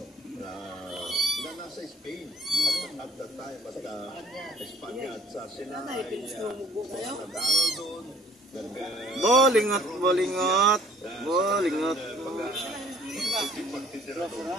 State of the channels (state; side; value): normal; both; correlation 0.57